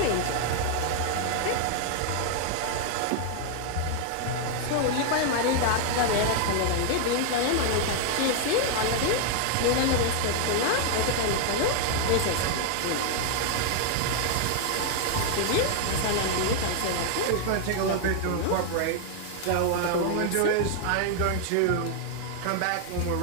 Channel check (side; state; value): both; different; correlation 0.00